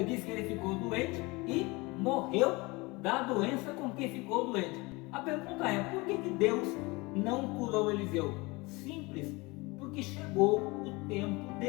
diz que ele ficou doente e morreu da doença com que ficou doente. A pergunta é, por que Deus não curou Eliseu? Simples, porque chegou o tempo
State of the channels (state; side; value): quieter; right; 24.6 dB